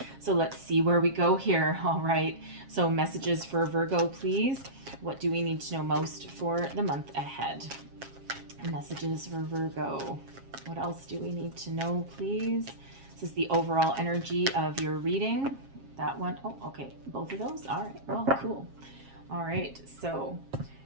So let's see where we go here. All right, so messages for Virgo, please. What do we need to know most for the month ahead? Messages for Virgo. What else do we need to know, please? This is the overall energy of your reading. That one, oh, okay, both of those. All right, well, cool. All right, so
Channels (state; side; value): late; left; 7.4 ms